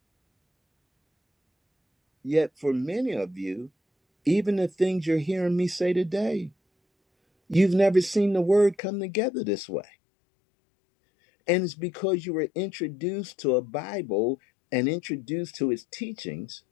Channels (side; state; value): right; drops out; at 8.8 s